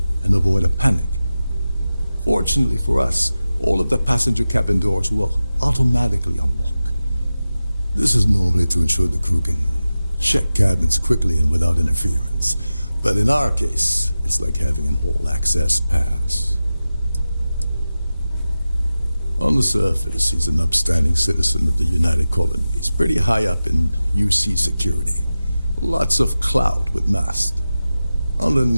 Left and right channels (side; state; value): both; inverted; correlation -0.94